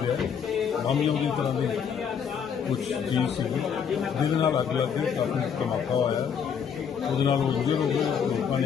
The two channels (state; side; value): quieter; right; 7.3 dB